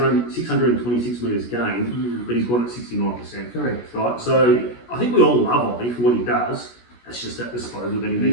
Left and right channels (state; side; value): late; right; 17 ms